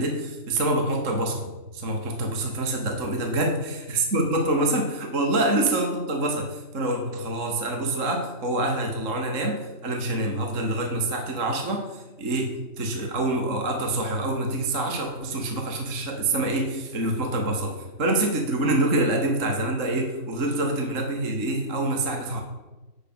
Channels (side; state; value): left; late; 3.7 ms